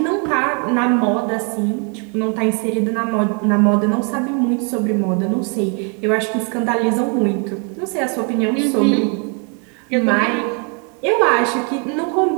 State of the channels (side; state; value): left; quieter; 37.7 dB